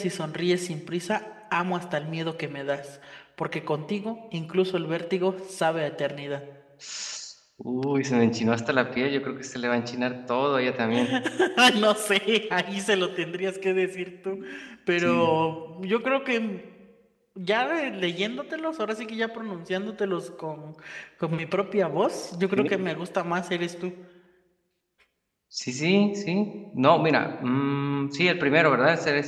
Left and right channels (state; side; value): identical; both; correlation 1.00